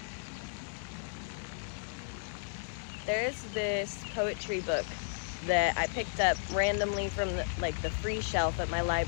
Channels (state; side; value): silent; right; digital silence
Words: There's this poetry book that I picked up randomly from the free shelf at my